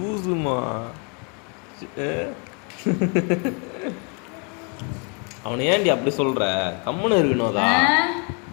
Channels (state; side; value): quieter; right; 36.0 dB